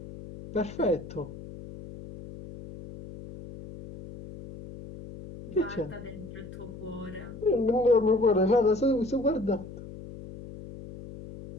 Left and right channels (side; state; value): left; noise; hum, 14 dB below the sound